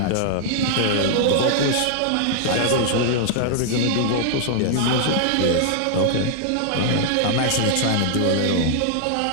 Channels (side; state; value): both; different; correlation -0.01